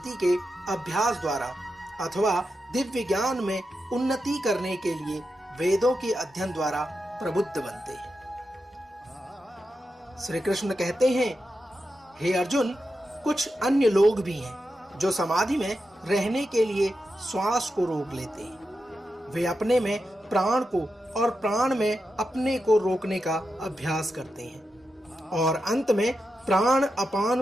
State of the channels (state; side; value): normal; both; correlation 0.88